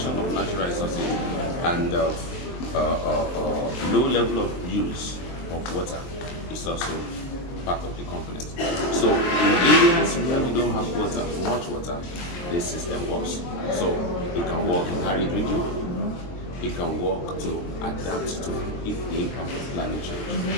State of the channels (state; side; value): late; right; 23 ms